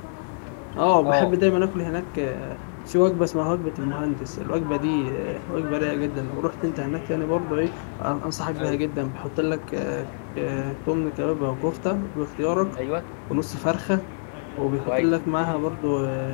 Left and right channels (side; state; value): right; silent; digital silence